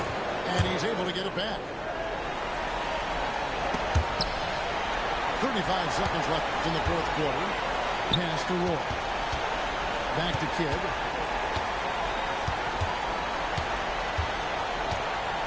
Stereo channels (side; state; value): both; identical; correlation 1.00